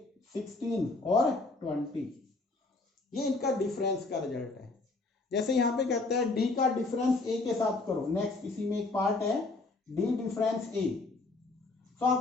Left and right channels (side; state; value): right; quieter; 3.4 dB